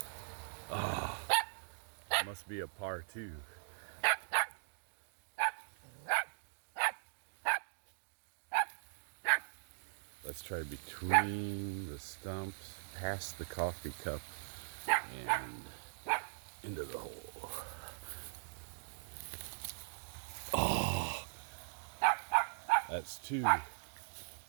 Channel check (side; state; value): left; silent; digital silence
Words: Ah, must be a par 2. Let's try between the stumps, past the coffee cup, and into the hole. Oh, that's 2.